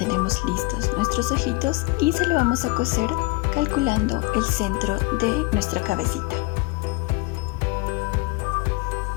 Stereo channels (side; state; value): right; quieter; 24.9 dB